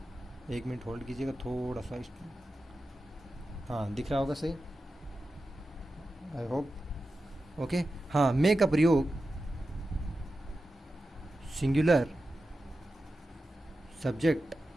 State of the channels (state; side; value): normal; both; correlation 0.92